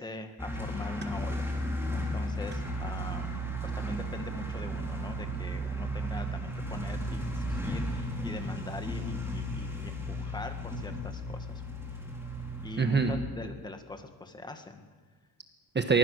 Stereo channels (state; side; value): normal; both; correlation 0.59